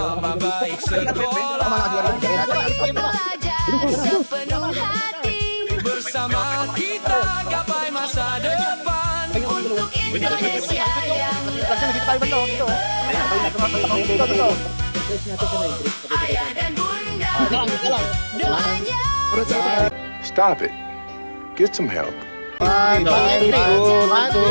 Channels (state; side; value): inverted; both; correlation -1.00